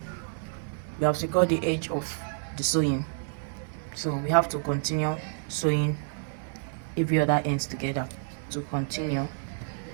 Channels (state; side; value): silent; left; 59 dB below the other